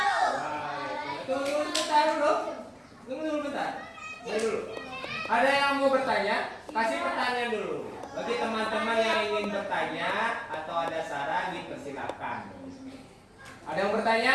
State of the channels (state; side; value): identical; both; correlation 1.00